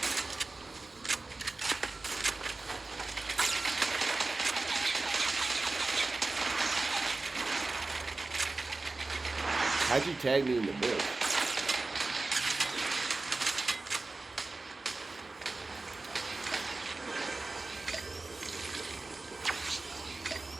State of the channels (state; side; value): quieter; left; 3.4 dB